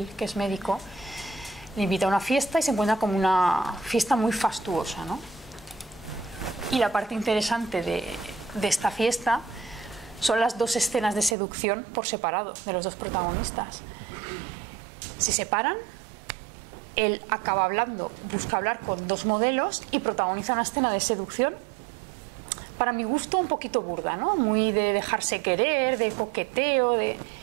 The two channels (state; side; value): drops out; left; at 11.4 s